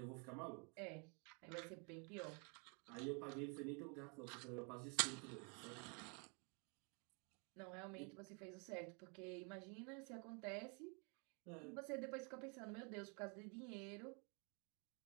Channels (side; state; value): left; quieter; 35.6 dB